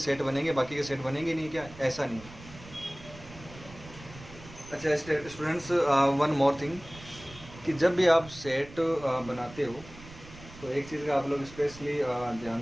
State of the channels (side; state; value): right; noise; rumble, 17 dB below the sound